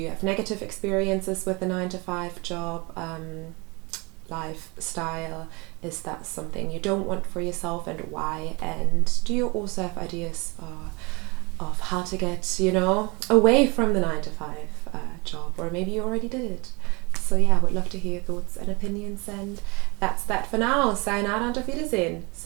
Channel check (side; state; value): left; quieter; 27.3 dB